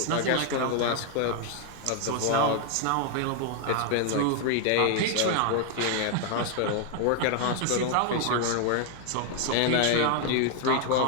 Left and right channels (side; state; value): both; different; correlation 0.00